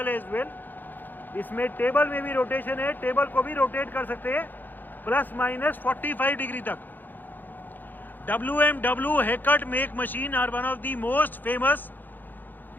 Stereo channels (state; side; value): late; right; 0.088 ms